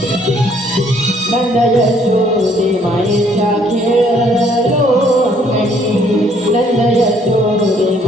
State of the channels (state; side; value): normal; both; correlation 0.64